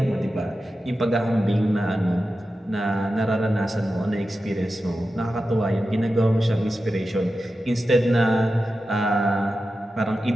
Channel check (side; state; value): both; normal; correlation 0.92